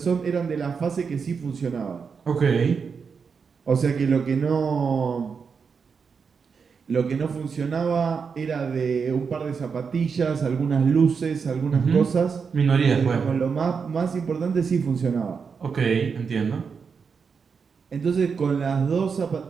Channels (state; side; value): quieter; left; 5.8 dB